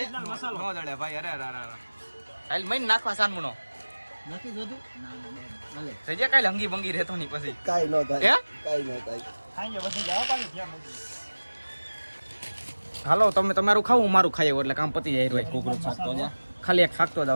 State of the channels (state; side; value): inverted; both; correlation -1.00